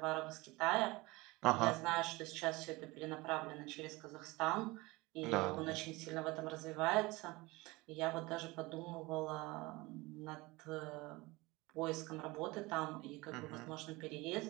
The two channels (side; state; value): left; quieter; 22.3 dB